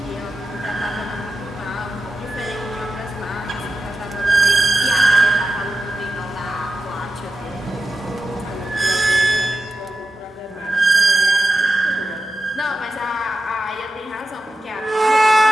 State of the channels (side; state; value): both; normal; correlation 0.92